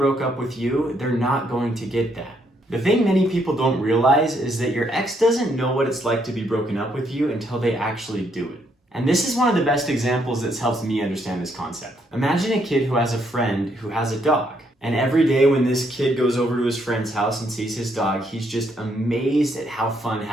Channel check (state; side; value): normal; both; correlation 0.73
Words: up with you, they're not going to get that. The thing many people don't realize is that your ex doesn't know what it's like to be broken up with you until they actually do it. And this is one of the best examples that's helped me understand this concept. Imagine a kid who has a friend who has a dog. And every day when this kid goes over to his friend's house and sees his dog, he's just amazed at how fun